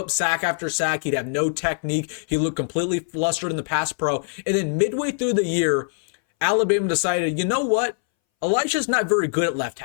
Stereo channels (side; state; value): right; silent; 62 dB below the other